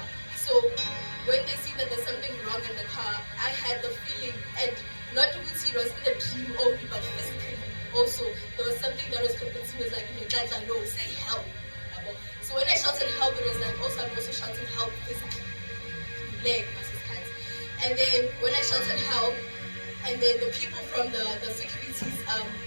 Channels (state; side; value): inverted; both; correlation -1.00